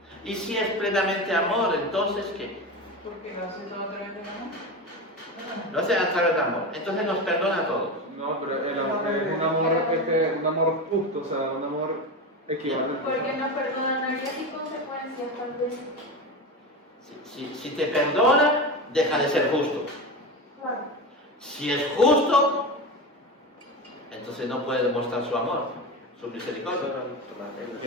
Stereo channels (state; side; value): normal; both; correlation 0.22